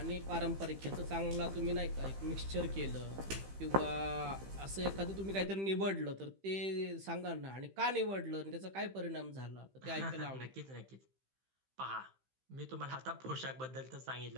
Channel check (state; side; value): late; left; 15 ms